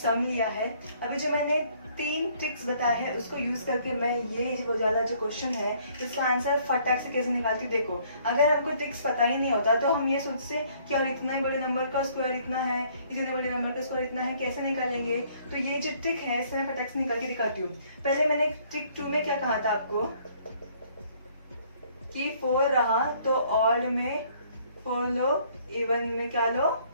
लिया है। अभी जो मैंने 3 ट्रिक्स बताए हैं उसको यूज करके मैं ये वो वाला जो क्वेश्चन है इसका आंसर फटाक से कैसे निकालती हूँ। देखो, अगर हमको ट्रिक्स पता ही नहीं होता तो हम ये सोचते कि यार इतना ही बड़े नंबर का स्क्वायर इतना है, इतने बड़े नंबर का स्क्वायर इतना है, कैसे निकालेंगे। तो ये जो ट्रिक है इससे मैं फटाक से निकाल के दिखाती हूँ। पहले मैंने ट्रिक 2 में क्या कहा था आपको कि 4 रहा तो ऑड में 4 लो, इवन में क्या लो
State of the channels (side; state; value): both; inverted; correlation -0.62